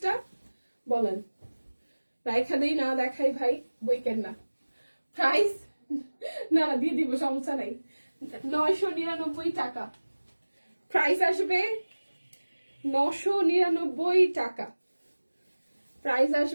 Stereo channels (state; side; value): inverted; both; correlation -1.00